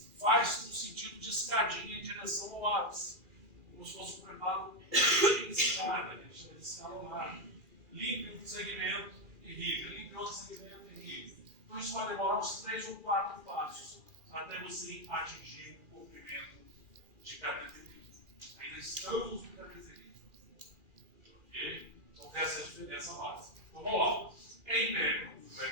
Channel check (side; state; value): left; late; 2.4 ms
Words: Faz no sentido de escadinha em direção ao ápice. Como se fosse um preparo de escada, a gente chama de escalonado. Limpe um segmento e irriga. Limpe outro segmento e irriga. Então isso vai demorar uns 3 ou 4 passos até você atingir o comprimento de cateterismo. Ainda estamos no cateterismo. Ok? Então tem essa diferença básica. Então vamos lá. Em